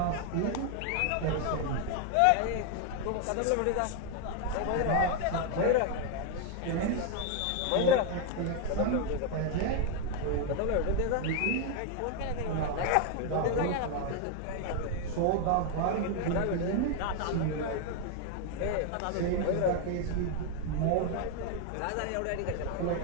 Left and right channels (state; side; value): different; both; correlation 0.01